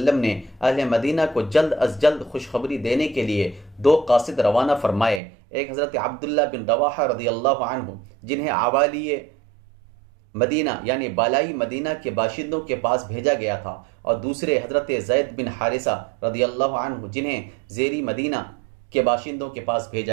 نے اہل مدینہ کو جلد از جلد خوشخبری دینے کے لیے 2 قاصد روانہ فرمائے۔ ایک حضرت عبداللہ بن رواحہ رضی اللہ عنہ جنہیں عوالی مدینہ یعنی بالائی مدینہ کے باشندوں کے پاس بھیجا گیا تھا، اور دوسرے حضرت زید بن حارثہ رضی اللہ عنہ جنہیں زیری مدینہ کے باشندوں کے پاس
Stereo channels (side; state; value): left; drops out; at 5.2 s